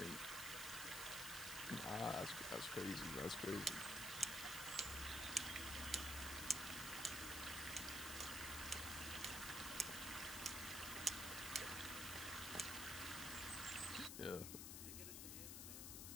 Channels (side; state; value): left; noise; hiss, 4 dB below the sound